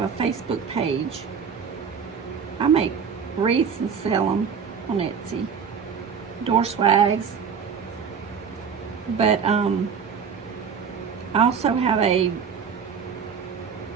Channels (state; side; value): quieter; left; 6.6 dB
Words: a Facebook page. I make wreaths and sell them on Etsy, door swags. But I also have a